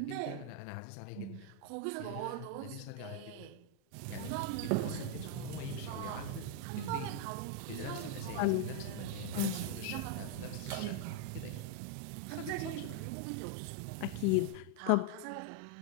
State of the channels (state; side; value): different; both; correlation 0.01